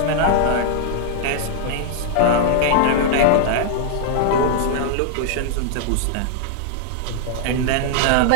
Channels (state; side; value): different; both; correlation -0.01